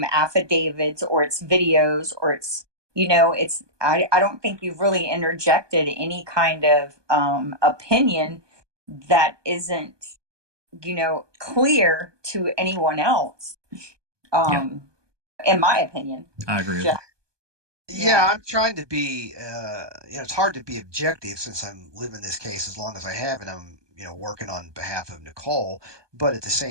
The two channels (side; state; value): left; late; 1.2 ms